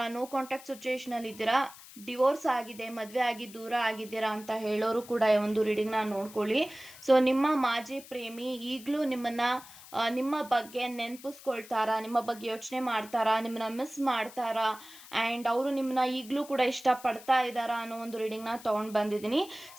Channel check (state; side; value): noise; left; hiss, 18 dB below the sound